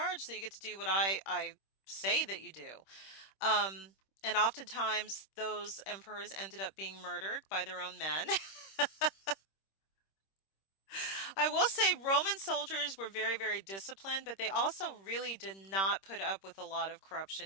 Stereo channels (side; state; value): right; late; 26 ms